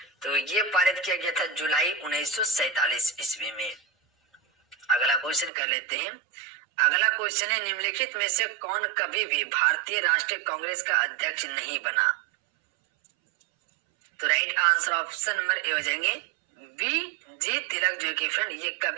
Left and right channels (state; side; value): drops out; left; at 5.5 s